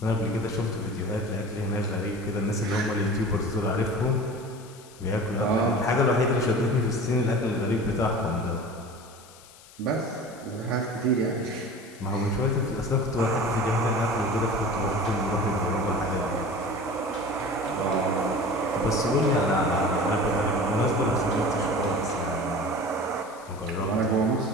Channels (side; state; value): left; noise; hiss, 22 dB below the sound